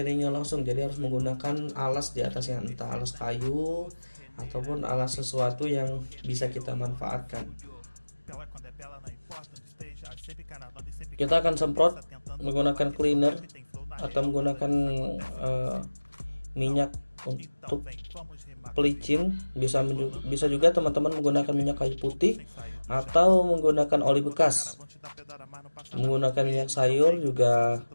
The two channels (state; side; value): inverted; both; correlation -1.00